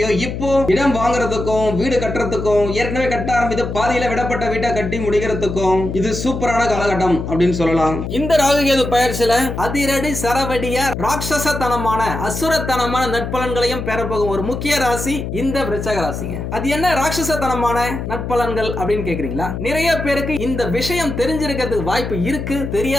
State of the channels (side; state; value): left; noise; hum, 5 dB below the sound